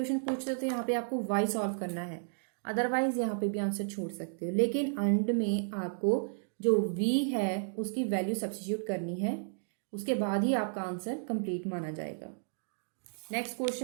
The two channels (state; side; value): silent; left; digital silence